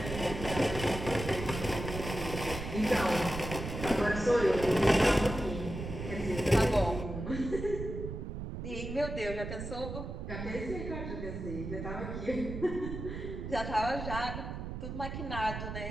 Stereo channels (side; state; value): right; noise; rumble, 6 dB below the sound